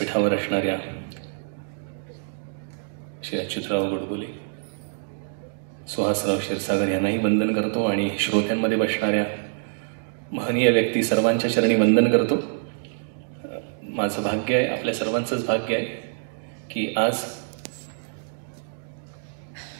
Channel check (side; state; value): left; silent; digital silence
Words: असणाऱ्या श्री अच्युतराव गोडबोले, सुहासराव क्षीरसागर यांनाही वंदन करतो आणि श्रोत्यांमध्ये बसणाऱ्या महनीय व्यक्ती सर्वांच्या चरणी वंदन करतो. माझं भाग्य आहे, आपल्या सर्वांचंच भाग्य आहे की आज